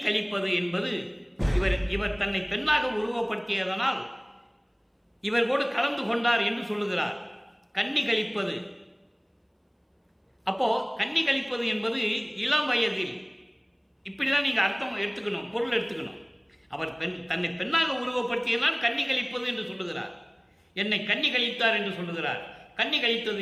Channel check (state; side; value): identical; both; correlation 1.00